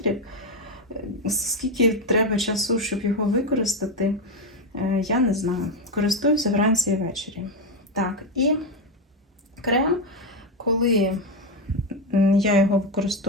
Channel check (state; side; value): normal; both; correlation 0.09